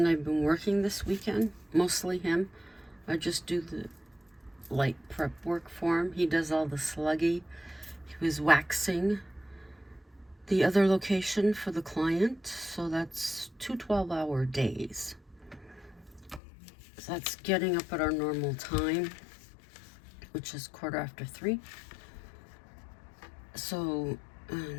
I have been working this weekend. Mostly him. I just do the light prep work for him. He does all the sluggy. He was waxing the other location for the client, so that's 2 12-hour days. So that's getting up at our normal time, which is 3:15. So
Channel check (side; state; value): right; drops out; at 16.4 s